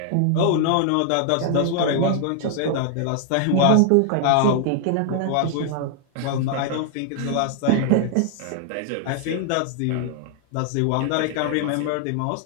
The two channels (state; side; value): different; both; correlation 0.00